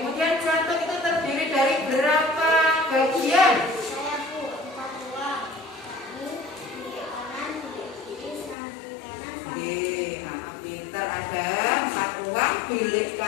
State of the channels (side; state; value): right; drops out; at 8.6 s